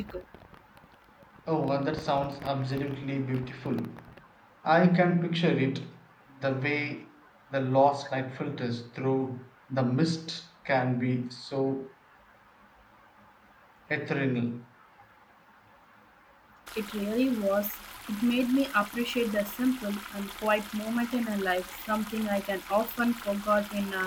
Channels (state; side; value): identical; both; correlation 1.00